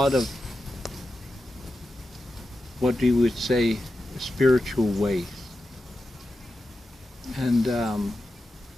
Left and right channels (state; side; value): normal; both; correlation 0.90